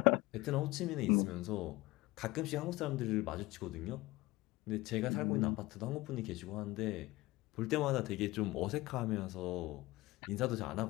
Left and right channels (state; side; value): quieter; right; 19.7 dB